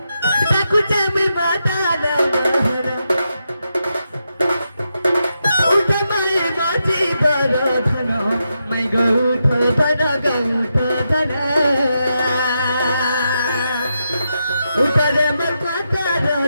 ताकू चामी माता नहर उठा माई माची बरधन मै गौठ धन गौठ धन उठा रे मर माता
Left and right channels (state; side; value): inverted; both; correlation -0.85